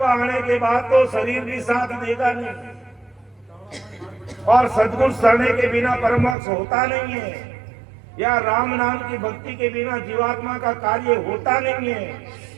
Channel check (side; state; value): left; drops out; at 6.4 s